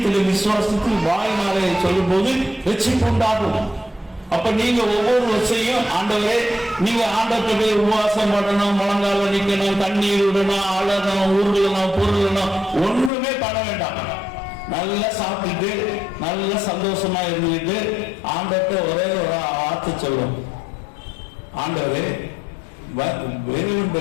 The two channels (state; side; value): drops out; right; at 13.1 s